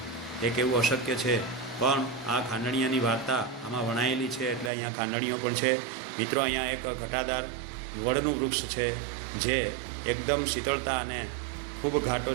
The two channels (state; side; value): drops out; left; at 4.7 s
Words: એક એવું અશક્ય છે, પણ આ ખાંડણીયાની વાર્તા આમાં વણાયેલી છે એટલે અહીંયા ખાંડણીઓ પણ છે મિત્રો. અહીંયા એક ઘટાદાર વડનું વૃક્ષ છે જે એકદમ શીતળતા અને ખૂબ ઘાટો